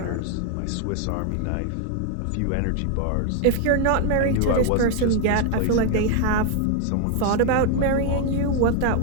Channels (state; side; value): different; both; correlation 0.00